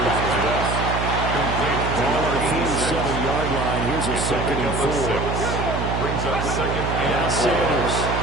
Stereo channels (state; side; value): noise; right; hum, 2 dB below the sound